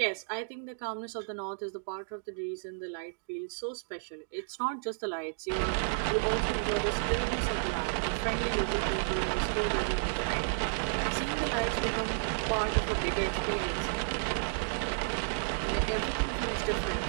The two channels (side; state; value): left; silent; digital silence